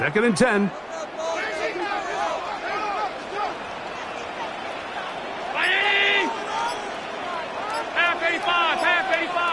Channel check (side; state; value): both; identical; correlation 1.00